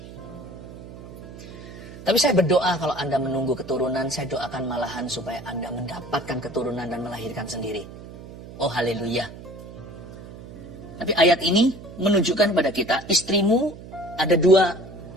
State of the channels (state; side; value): noise; right; hum, 15 dB below the sound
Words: Tapi saya berdoa kalau Anda menunggu keturunan, saya doakan malahan supaya Anda mendapatkan keturunan dan melahirkan sendiri. Oh haleluya. Tapi ayat ini menunjukkan kepada kita, istrimu ada